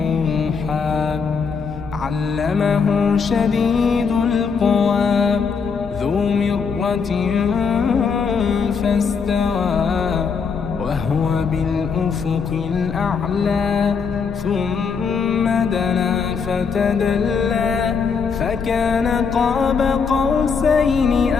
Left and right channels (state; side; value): quieter; right; 5.7 dB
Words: علمه شديد القوى ذو مرة فاستوى وهو بالأفق الأعلى ثم دنا فتدلى فكان قاب قوسين